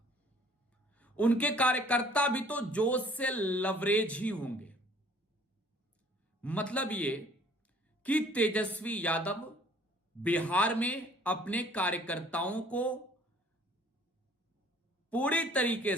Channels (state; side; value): normal; both; correlation 0.55